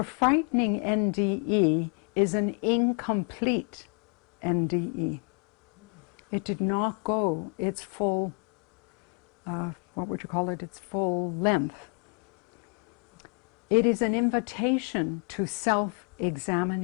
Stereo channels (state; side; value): quieter; right; 39.7 dB